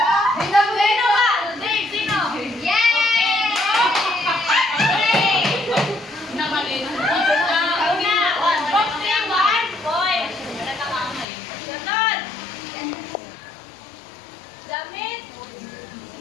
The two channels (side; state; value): right; drops out; at 11.2 s